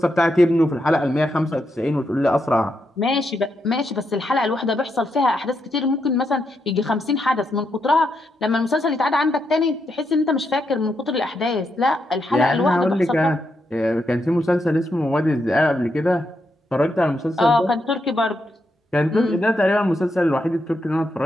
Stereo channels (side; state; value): both; normal; correlation 0.82